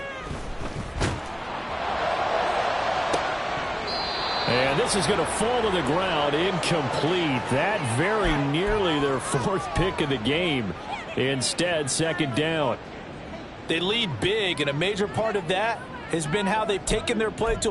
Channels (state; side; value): identical; both; correlation 1.00